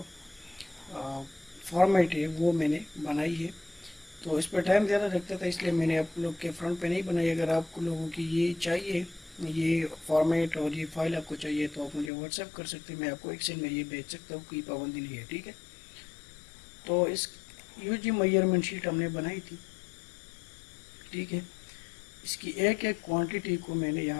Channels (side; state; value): right; drops out; at 12.1 s